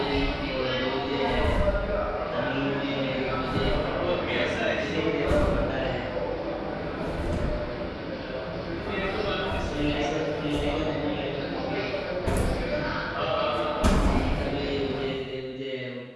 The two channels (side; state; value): both; identical; correlation 1.00